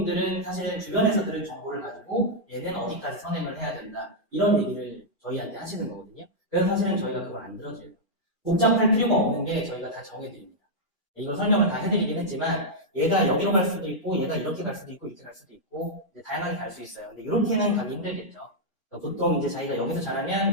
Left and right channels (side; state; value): both; normal; correlation -0.06